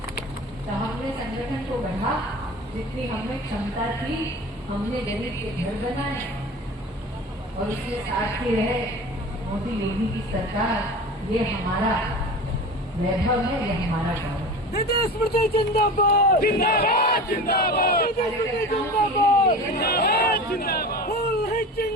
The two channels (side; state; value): both; normal; correlation 0.34